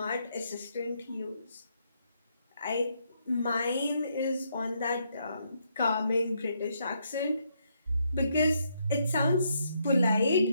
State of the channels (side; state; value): both; inverted; correlation -0.76